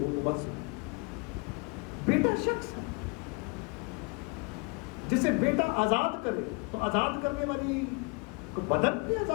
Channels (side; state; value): right; quieter; 30.3 dB